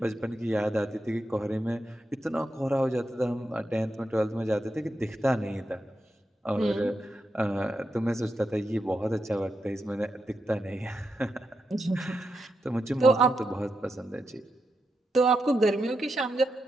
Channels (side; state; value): both; normal; correlation 0.85